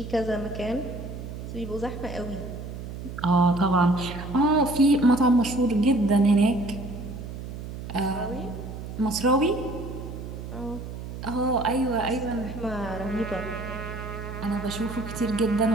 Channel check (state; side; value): noise; right; hum, 9 dB below the sound